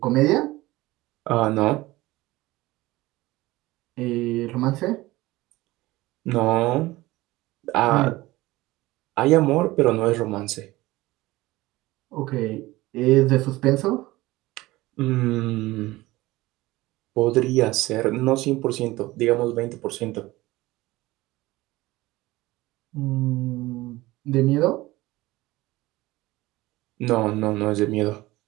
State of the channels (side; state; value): left; quieter; 19.0 dB